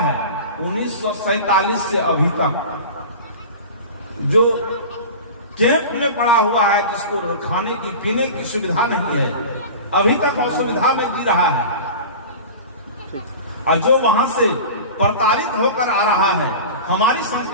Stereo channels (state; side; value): inverted; both; correlation -0.33